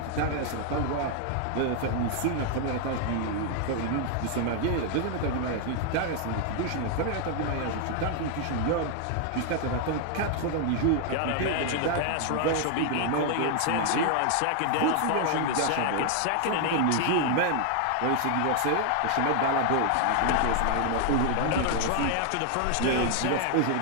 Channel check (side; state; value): both; different; correlation 0.00